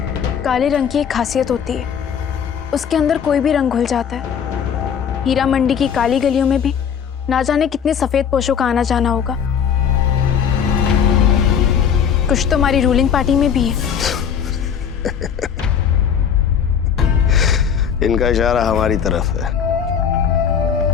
काले रंग की एक खासियत होती है, उसके अंदर कोई भी रंग घुल जाता है। हीरा मंडी की काली गलियों में भी ना जाने कितने सफेद पोशों का आना जाना होगा। कुछ तो हमारी रूलिंग पार्टी में भी है। इनका इशारा हमारी तरफ है।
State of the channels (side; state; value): right; quieter; 7.7 dB